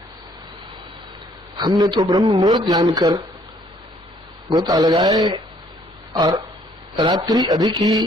हमने तो ब्रह्म मुहूर्त जानकर गोता लगाए और रात्रि अधिक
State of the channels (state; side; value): normal; both; correlation 0.63